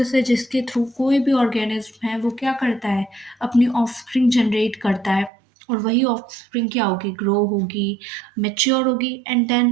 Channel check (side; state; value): left; drops out; at 5.3 s